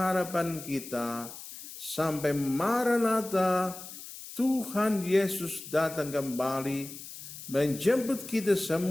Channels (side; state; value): left; noise; hiss, 13 dB below the sound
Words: kita sampai Maranatha, Tuhan Yesus datang kembali menjemput kita